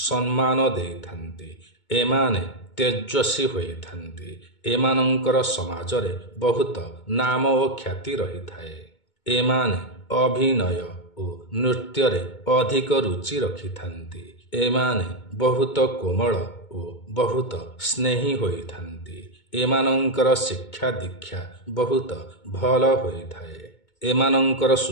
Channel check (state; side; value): late; right; 2.2 ms